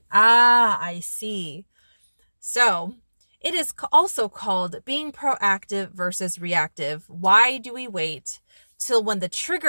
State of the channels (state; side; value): inverted; both; correlation -1.00